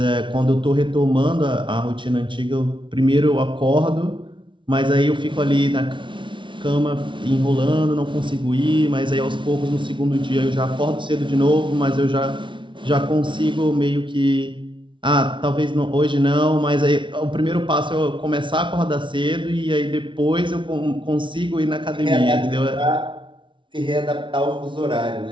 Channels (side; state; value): left; late; 0.24 ms